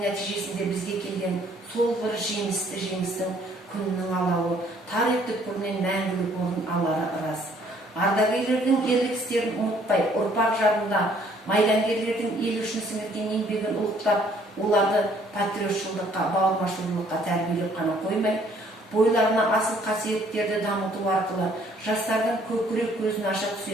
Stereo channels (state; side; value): normal; both; correlation 0.62